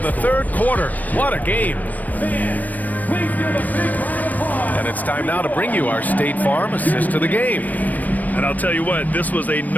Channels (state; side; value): late; right; 0.081 ms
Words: the third quarter. What a game. And it's time now to bring you our State Farm assist of the game. And I'll tell you what, this was a